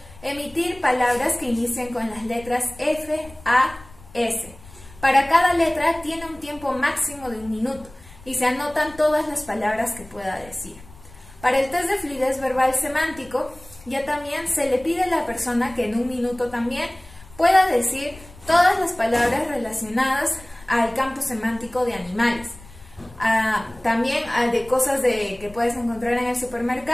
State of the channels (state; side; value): noise; left; rumble, 21 dB below the sound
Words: emitir palabras que inicien con las letras F, A, S. Para cada letra tiene un tiempo máximo de 1 minuto y se anotan todas las palabras que pueda decir. Para el test de fluidez verbal semántico, ya también se le pide a la persona que en 1 minuto también pueda decir todas las palabras relacionadas al campo semántico de animales. También de cosas que puedes encontrar en el